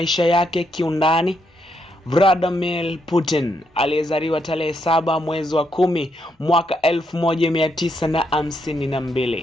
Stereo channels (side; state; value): both; normal; correlation 0.78